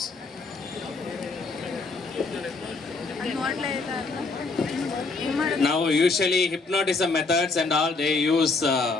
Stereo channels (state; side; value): quieter; right; 3.9 dB